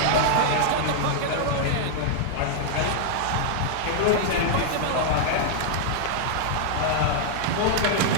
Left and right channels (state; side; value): different; both; correlation -0.01